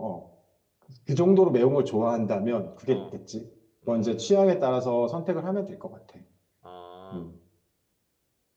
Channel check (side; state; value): both; identical; correlation 1.00